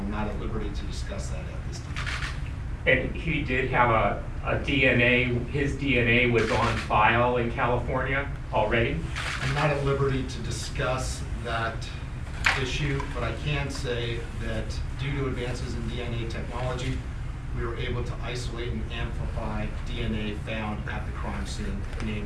not at liberty to discuss that at this time. And he did have a DNA, his DNA was on file in California already? I'm not at liberty to discuss that issue, but I can say that due to advances in DNA technology, we were able to isolate and amplify DNA found at the crime scene,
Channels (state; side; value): identical; both; correlation 1.00